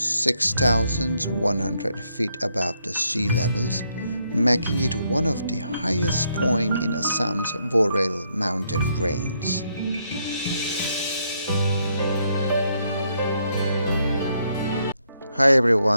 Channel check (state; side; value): inverted; both; correlation -0.75